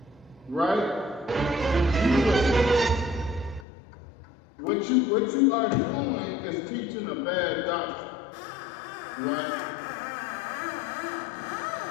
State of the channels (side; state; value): right; drops out; at 3.7 s